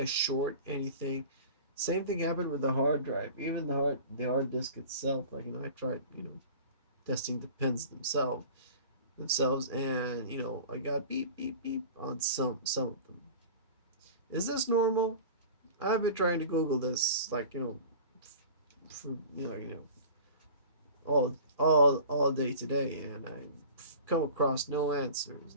short anything? Same thing happened with the hard drive. Even the hard disk itself, like, I tried, testing the pins themselves, and I got beep beep beep on some of them. Is this normal? I've been trying to Google this, like, for all day today, and I come across no answers.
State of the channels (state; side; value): inverted; both; correlation -0.41